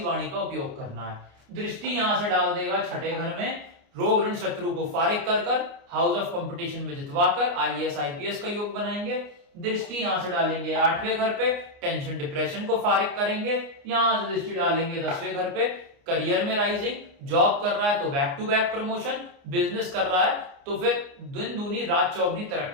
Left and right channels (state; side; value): late; left; 29 ms